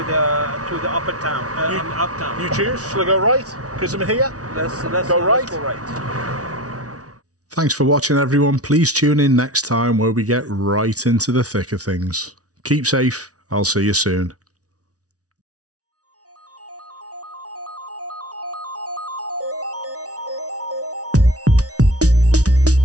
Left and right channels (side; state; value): left; late; 0.67 ms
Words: the uptown. You choose. Shall I go right? Because I'm here. Let's go right. Let's go right. Thanks for watching, everyone. Please tune in next time where we get right into the thick of things. Keep safe. I'll see you soon.